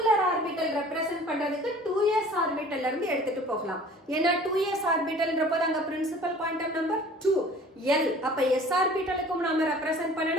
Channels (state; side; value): normal; both; correlation 0.47